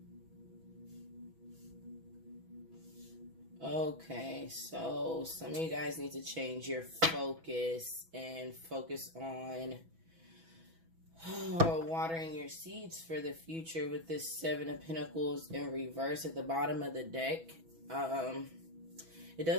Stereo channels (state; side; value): late; left; 6.1 ms